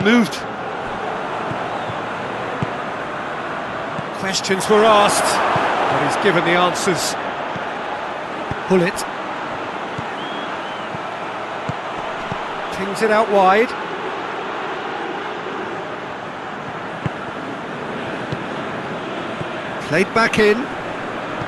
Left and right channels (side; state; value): both; identical; correlation 1.00